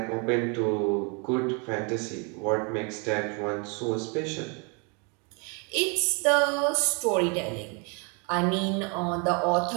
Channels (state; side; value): quieter; left; 34.3 dB